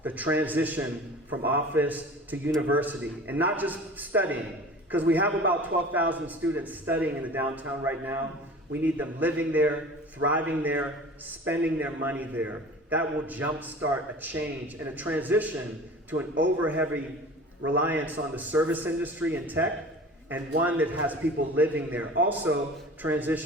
the transition from office to university, and not just studying, because we have about 12,000 students studying in the downtown right now. We need them living there, thriving there, spending their money there. That will jumpstart a change and a transition to an over-heavy reliance on the service industry and tech, and one that has people living there. Also,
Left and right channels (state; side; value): normal; both; correlation 0.40